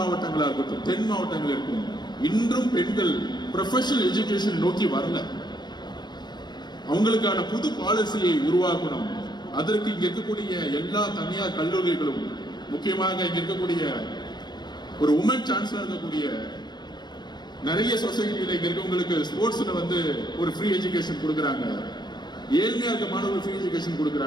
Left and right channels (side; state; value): right; late; 0.21 ms